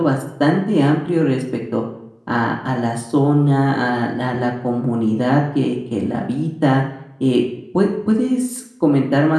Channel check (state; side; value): identical; both; correlation 1.00